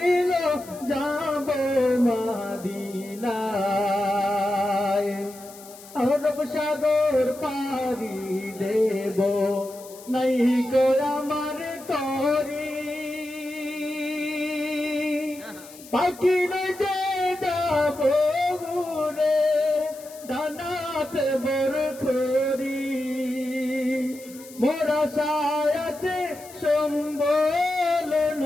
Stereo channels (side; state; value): left; noise; hiss, 19 dB below the sound